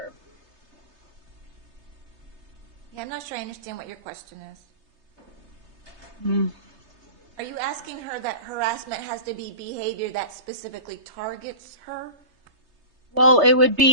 Yeah, I'm not sure I understand what your question is. Hmm. Are you asking her that harassment has to be behavior that specifically targets her? Well, it would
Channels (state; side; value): late; left; 3.3 ms